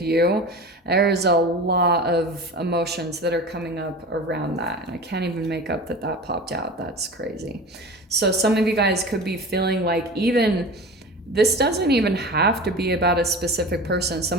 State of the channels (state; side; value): normal; both; correlation 0.34